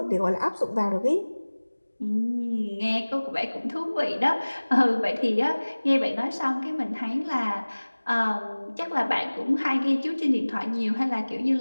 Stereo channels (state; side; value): inverted; both; correlation -1.00